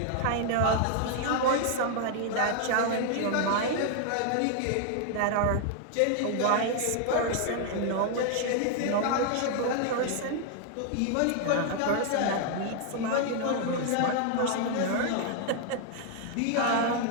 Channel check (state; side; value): different; both; correlation 0.00